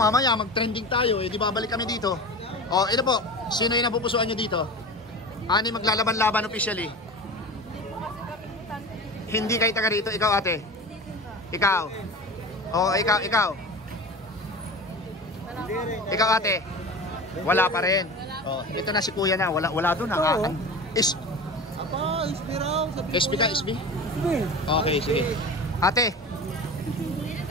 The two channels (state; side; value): normal; both; correlation 0.32